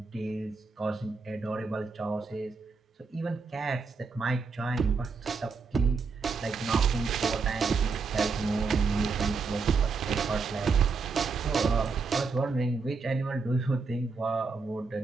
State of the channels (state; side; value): quieter; left; 4.7 dB